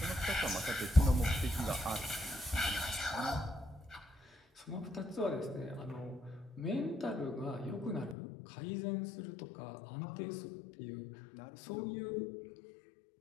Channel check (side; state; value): right; drops out; at 8.2 s